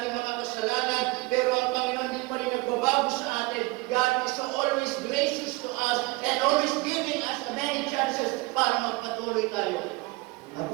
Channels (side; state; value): left; quieter; 24.1 dB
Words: mga kasalanan, pero ang Panginoon din pa rin nagbabago sa atin. God is always gracious to us and always giving us many chances para magpatuloy tayo.